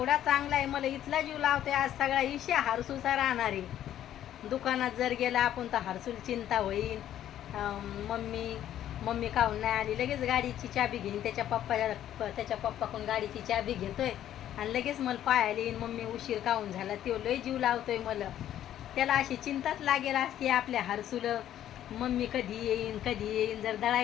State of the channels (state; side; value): quieter; right; 11.5 dB